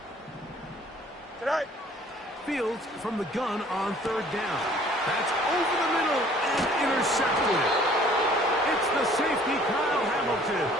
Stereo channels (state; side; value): normal; both; correlation 0.55